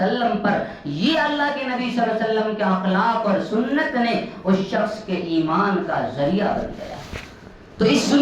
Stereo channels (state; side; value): identical; both; correlation 1.00